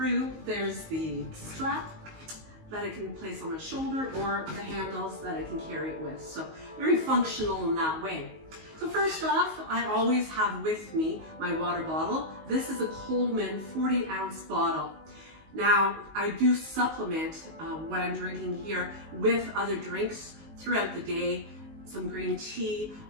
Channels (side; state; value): left; late; 19 ms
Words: there's the strap that I can place on my shoulder or the handles that I can carry it with. So very functional in that way. So first off, I always have with me my water bottle. This is a Coleman 40-ounce bottle. Now, I do supplement what I'm drinking here with other drinks throughout the day, some green tea,